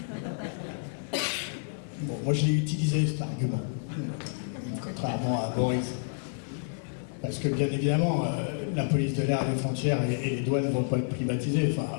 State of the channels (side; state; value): right; silent; 58 dB below the other